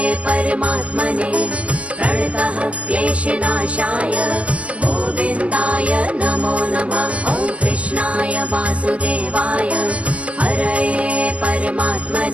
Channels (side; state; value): left; late; 0.064 ms